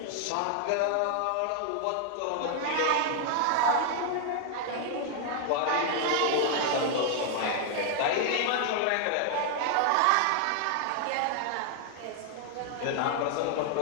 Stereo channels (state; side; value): different; both; correlation 0.00